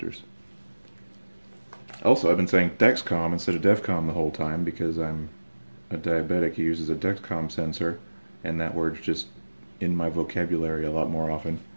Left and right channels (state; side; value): inverted; both; correlation -1.00